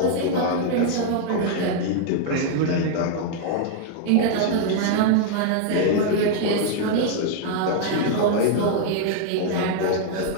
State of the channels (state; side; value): different; both; correlation 0.00